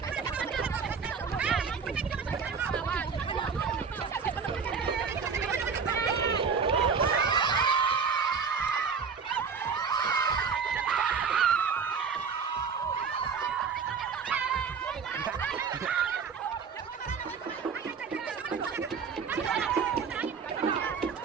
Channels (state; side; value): quieter; left; 5.9 dB